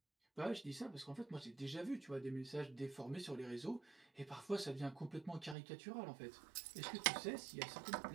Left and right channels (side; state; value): left; drops out; at 5.6 s